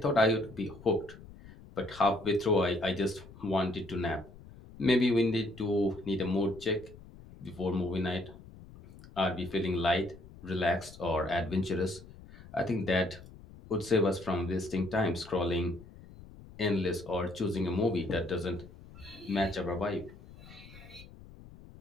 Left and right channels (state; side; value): noise; left; rumble, 19 dB below the sound